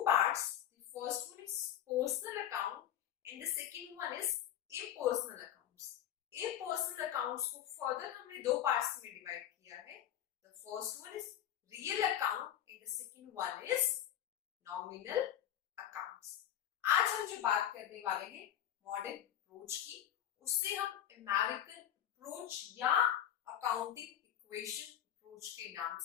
parts. The first one is personal account and the second one is impersonal account. Impersonal accounts को further हमने दो parts में डिवाइड किया है। The first one is real account and the second one is nominal accounts. आज हम जो बात करने वाले हैं मॉडर्न अप्रोच की, उससे हम अमेरिकन अप्रोच या अकाउंटिंग इक्वेशन अप्रोच के नाम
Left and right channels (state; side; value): quieter; right; 10.9 dB